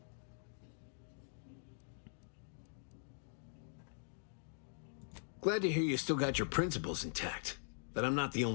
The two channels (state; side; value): silent; right; digital silence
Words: Glad to hear you still got your principles intact. That I'm not the